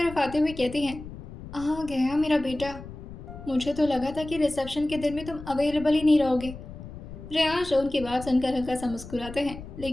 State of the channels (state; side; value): noise; left; rumble, 13 dB below the sound